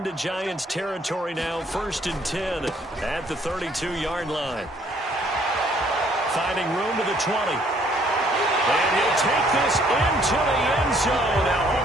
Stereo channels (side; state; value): both; normal; correlation 0.63